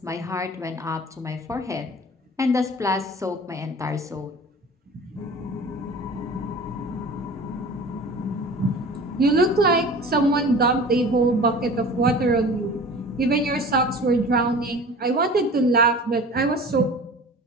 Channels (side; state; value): both; normal; correlation 0.40